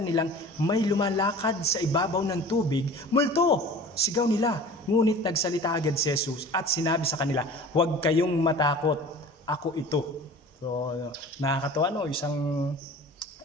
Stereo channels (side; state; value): both; normal; correlation 0.41